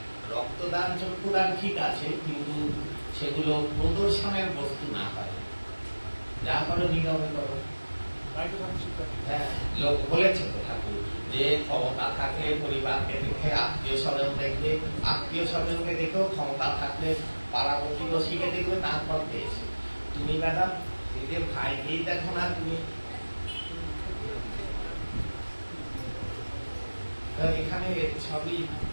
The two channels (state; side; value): inverted; both; correlation -1.00